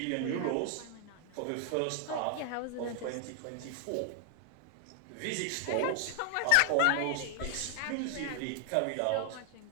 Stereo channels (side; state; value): both; different; correlation 0.00